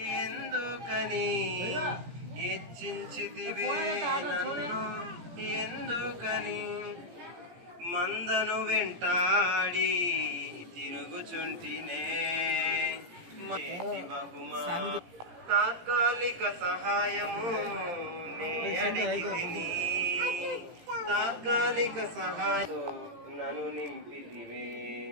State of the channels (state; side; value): late; left; 17 ms